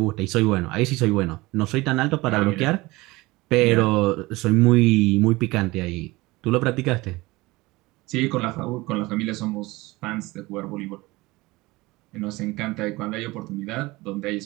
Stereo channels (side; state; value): left; quieter; 21.3 dB